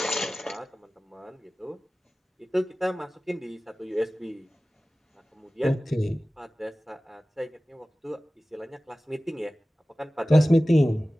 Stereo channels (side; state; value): both; normal; correlation 0.96